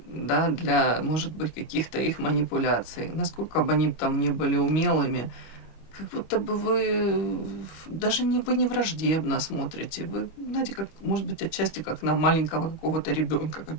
для, может быть, каких-то их манипуляций. Насколько бы они там не были умелыми, как будто бы вы даже не, вы не враждебно смотрите. Вы, знаете, как, может быть, отчасти как на маленького какого-то ребенка,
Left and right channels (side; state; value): right; late; 25 ms